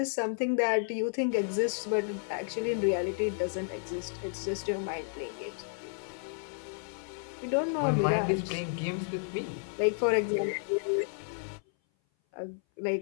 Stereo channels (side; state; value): right; silent; 57 dB below the other